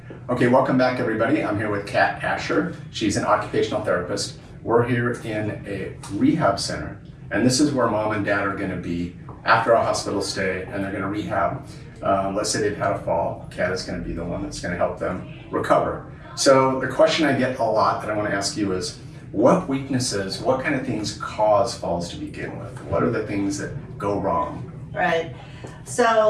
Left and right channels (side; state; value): both; identical; correlation 1.00